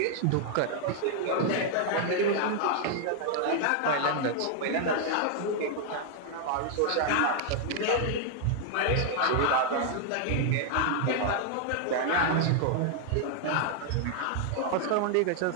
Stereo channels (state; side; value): different; both; correlation 0.00